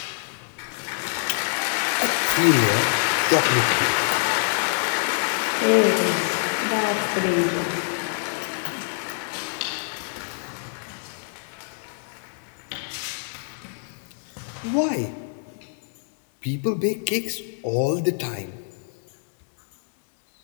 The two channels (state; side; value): silent; right; digital silence